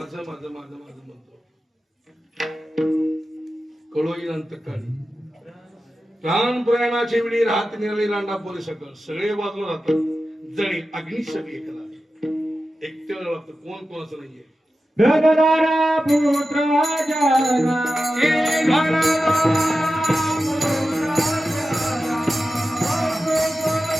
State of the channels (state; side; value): normal; both; correlation 0.93